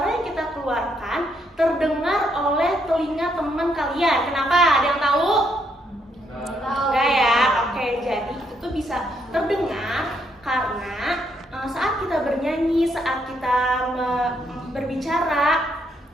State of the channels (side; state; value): both; normal; correlation 0.74